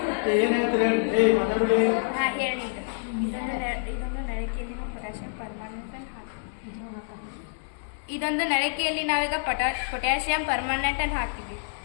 ಏನಾಯ್ತು ಹೇಳಿ ಮಾತಾಡಲಿ. ಹಾಂ ಹೇಳಿ. ಇದೊಂದು ನಳಿಕೆಯಲ್ಲಿ ಪೊಟ್ಯಾಷಿಯಂ ಪರ್ಮಾನೆಂಟ್ ಅನ್ನು ಹಾಕಿ ಇದೊಂದು ನಳಿಕೆಯಲ್ಲಿ ನಾವೀಗ ಪೊಟ್ಯಾಷಿಯಂ ಪರ್ಮಾನೆಂಟ್ ಅನ್ನು ಹಾಕಿದ್ವಿ.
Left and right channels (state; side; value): silent; right; 60 dB below the other